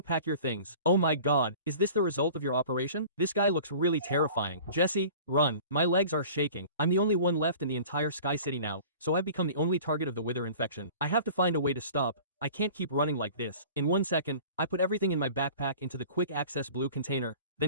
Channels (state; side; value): inverted; both; correlation -0.43